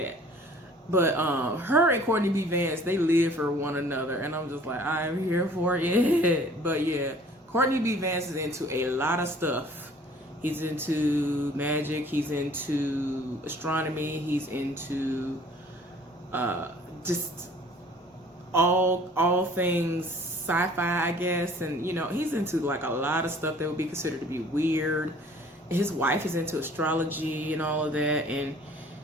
But her and Courtney B. Vance, they live for one another. And I'm just like, I'm here for it. But yeah, Courtney B. Vance is into a lot of stuff He's into magic. He's into astronomy. He's into just all things sci-fi, I guess. And you know, he's into like a lot of stuff that would be considered to be weird. His wife is into astrology and all of that. And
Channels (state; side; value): normal; both; correlation 0.52